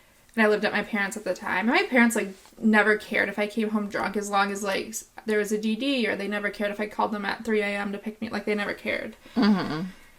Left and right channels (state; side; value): identical; both; correlation 1.00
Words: And I lived at my parents' at the time. And my parents like never cared if I came home drunk, as long as like there was a DD, or they never cared if I called them at 3 a.m. to pick me. Like they never cared.